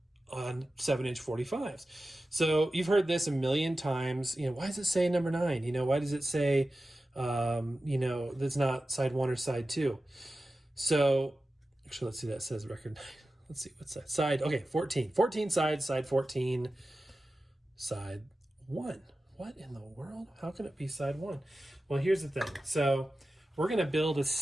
on 7-inch 45s. So you've heard this a million times. Why does it say number 9? Why does it say, that's not side 1 or side 2? So actually, let's see, that says record 9. Let's see, what side? Okay, 14. 14 sides, side 14, side 1. What in the world? How can it be side 1? Well, here's the thing. So we're going to build a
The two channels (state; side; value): normal; both; correlation 0.94